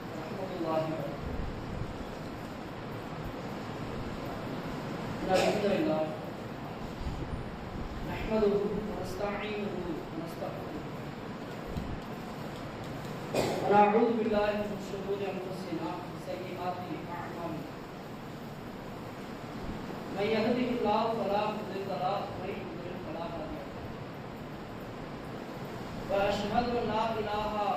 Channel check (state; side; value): identical; both; correlation 1.00